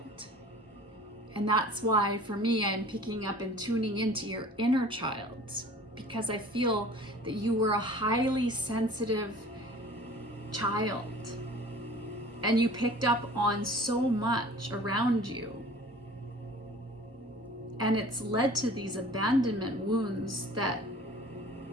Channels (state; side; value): normal; both; correlation 0.46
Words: And that's why for me, I'm picking up and tuning into your inner child, because I feel that you were a highly sensitive child and you picked up on so much around you, and it's led to these abandonment wounds that